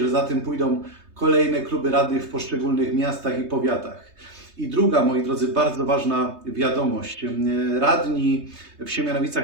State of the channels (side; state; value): left; late; 3.2 ms